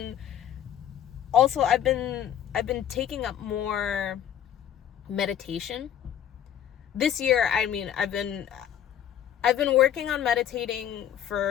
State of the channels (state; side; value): quieter; right; 10.1 dB